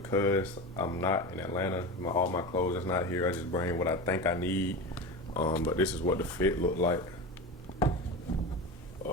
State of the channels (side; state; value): both; normal; correlation 0.26